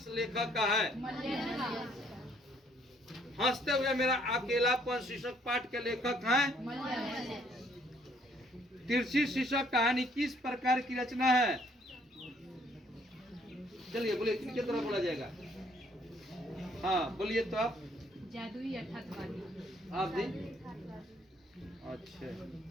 लेखक का है? हंसते हुए मेरा अकेलापन शीर्षक पाठ के लेखक हैं? तिरछी शीर्षक कहानी किस प्रकार की रचना है? चलिए बोलिए, किनके तरफ बोला जाएगा? हाँ बोलिए तो आप। जादुई यथार्थवादी। आप जी? अच्छा,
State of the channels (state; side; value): normal; both; correlation 0.65